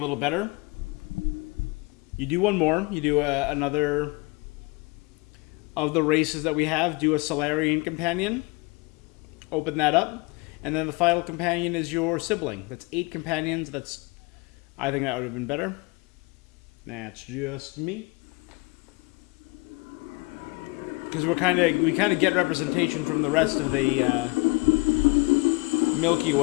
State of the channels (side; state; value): right; quieter; 26.2 dB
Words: better. You do one more. You do another of the races that we have. Do a Solarian companion. Open that up. And then the final companion is your sibling. That's 8 companions. I think that would have been better. That's just me. Because we kind of get representation from the rest of the Milky